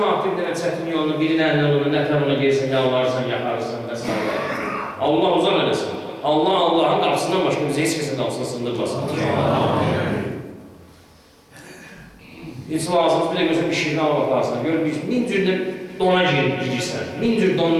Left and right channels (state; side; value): identical; both; correlation 1.00